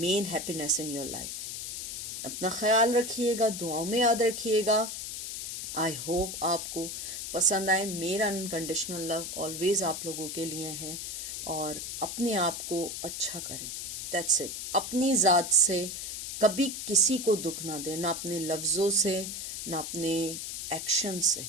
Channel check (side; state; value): left; noise; hiss, 6 dB below the sound